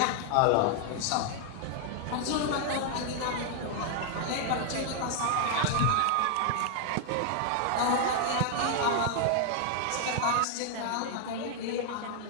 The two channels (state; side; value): different; both; correlation 0.00